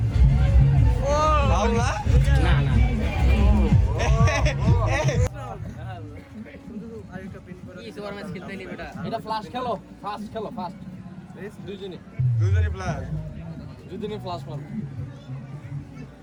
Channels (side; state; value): both; identical; correlation 1.00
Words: ও বাউলা না না কি সুপার ম্যাচ খেলতে নি বেটা এটা ফ্লাশ খেলো ফাস্ট খেলো ফাস্ট দুইজনই প্লাস দুইজনই ফ্লাশ মারো